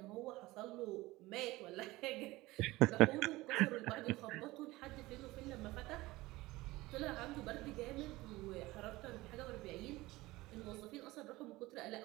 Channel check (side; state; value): left; quieter; 19.5 dB